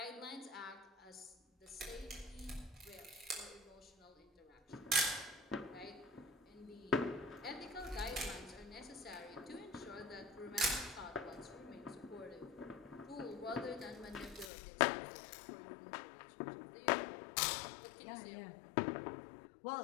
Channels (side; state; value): right; drops out; at 14.5 s